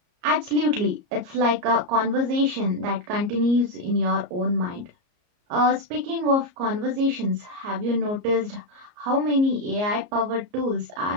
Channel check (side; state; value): left; late; 34 ms